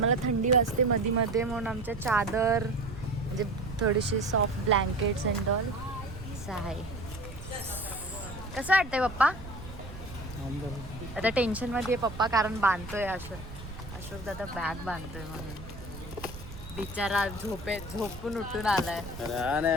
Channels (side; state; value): right; noise; rumble, 13 dB below the sound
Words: थंडी वाजते मध्ये मध्ये म्हणून आमच्या चादर म्हणजे थोडीशी सॉफ्ट ब्लँकेट्स अँड ऑल असं आहे. कसं वाटतंय पप्पा? आता टेन्शन मध्ये आहे पप्पा कारण बांधतोय अशोक दादा बॅग बांधतोय म्हणून. बिचारा झोपून उठून आलाय.